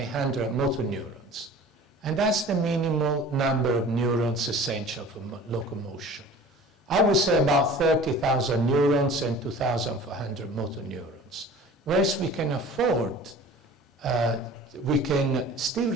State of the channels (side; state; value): both; normal; correlation 0.43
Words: motor neurons. And that's the minimal number of neurons essential for locomotion. I would say about 30,000 neurons and 2,400 motor neurons. Whereas we can afford, we can still